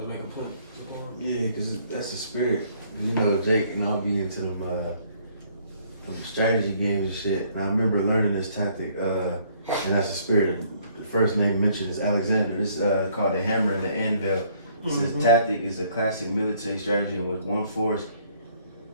to make a point? Yeah, because that's the spirit. You know, Jake and I'll be into them strategy games and shit. And I remember learning this tactic, and that's the spirit. The first name mentioned is Alexander. This is called the hammer and the anvil. This tactic is a classic military strategy in which one force,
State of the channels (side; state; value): both; inverted; correlation -0.63